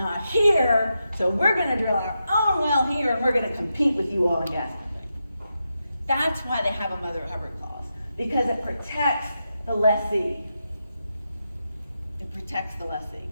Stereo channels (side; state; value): both; inverted; correlation -0.86